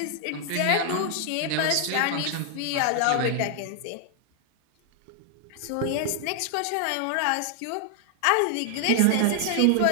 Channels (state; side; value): different; both; correlation 0.00